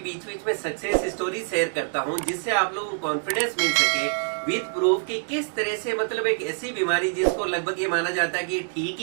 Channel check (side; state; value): left; silent; 61 dB below the other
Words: बीच में सक्सेस स्टोरी शेयर करता हूं, जिससे आप लोगों को कॉन्फिडेंस मिल सके विद प्रूफ कि किस तरह से एक ऐसी बीमारी जिसको लगभग ये माना जाता है कि ठीक